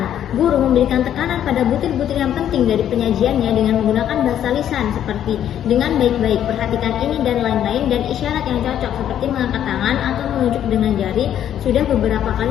Guru memberikan tekanan pada butir-butir yang penting dari penyajiannya dengan menggunakan bahasa lisan seperti dengan baik-baik, perhatikan ini dan lain-lain, dan isyarat yang cocok seperti mengangkat tangan atau menunjuk dengan jari sudah beberapa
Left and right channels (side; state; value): right; quieter; 10.5 dB